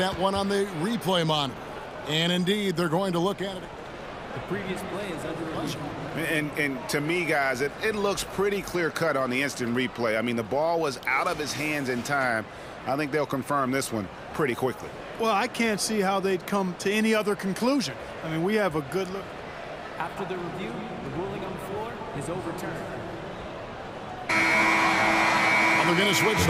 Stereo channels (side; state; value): both; identical; correlation 1.00